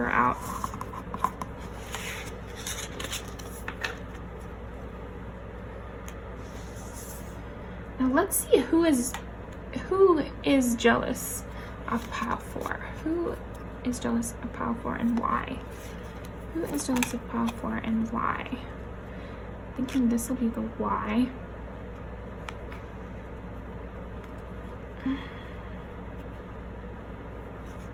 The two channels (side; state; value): both; identical; correlation 1.00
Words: out. Now let's see who is jealous of pile 4. Who is jealous of pile 4 and why? Who is jealous of pile 4 and why? Thinking this will be the why.